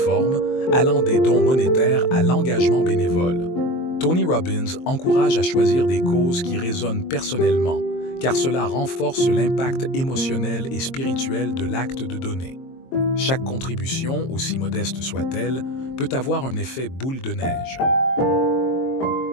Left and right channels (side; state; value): right; late; 23 ms